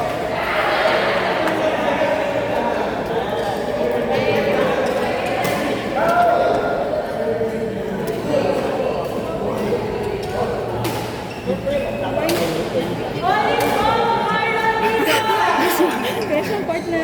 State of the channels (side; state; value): both; identical; correlation 1.00